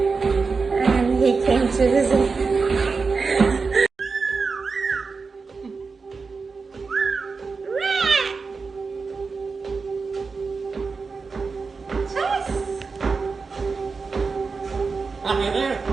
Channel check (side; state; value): left; quieter; 4.6 dB